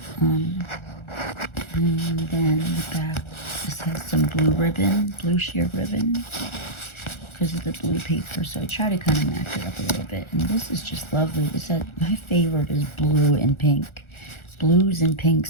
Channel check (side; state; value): right; late; 1.4 ms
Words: and then the back, this has some blue ribbon, blue sheer ribbon, because of the blue paper, so I try to kind of match it up a little bit. And this is just lovely. My favorite is blue and pink. blues and